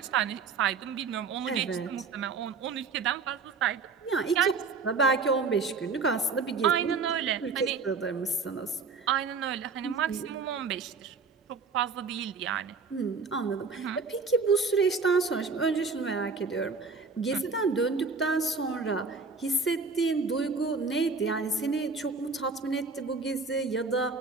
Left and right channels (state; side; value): quieter; left; 4.7 dB